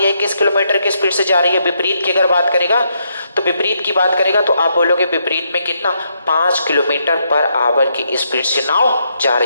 है किस किलोमीटर की स्पीड से जा रही है? विपरीत की अगर बात करेगा तो विपरीत की बात करेगा तो आप बोलोगे विपरीत में कितना? 5 किलोमीटर पर आवर की स्पीड से नाव जा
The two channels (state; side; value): inverted; both; correlation -0.77